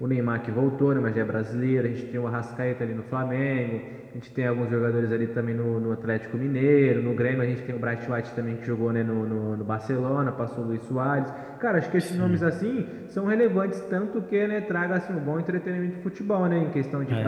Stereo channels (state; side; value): identical; both; correlation 1.00